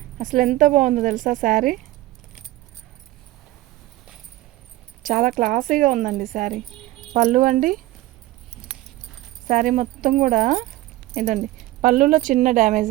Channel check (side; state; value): left; quieter; 16.9 dB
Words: అసలు ఎంత బాగుందో తెలుసా శారీ. చాలా క్లాసీగా ఉందండి శారీ. పళ్ళు అండి, శారీ మొత్తం కూడా ఇదండి. పళ్ళులో చిన్న డ్యామేజ్